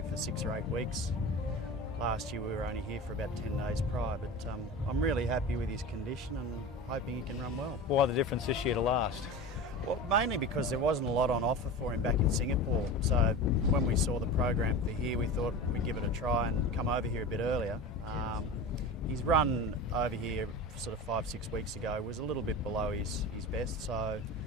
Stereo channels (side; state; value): both; normal; correlation 0.31